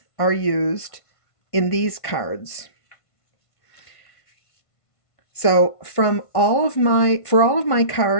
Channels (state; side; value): late; right; 1.5 ms